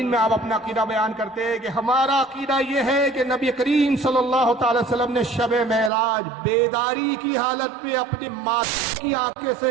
میں آپ اپنا عقیدہ بیان کرتے ہیں کہ ہمارا عقیدہ یہ ہے کہ نبی کریم صلی اللہ تعالی وسلم نے شب معراج بیداری کی حالت میں اپنی ماں کی آنکھیں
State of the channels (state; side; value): drops out; left; at 5.9 s